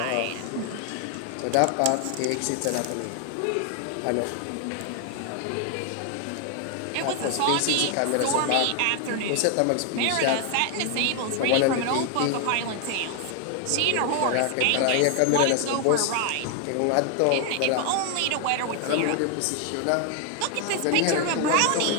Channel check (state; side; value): different; both; correlation 0.00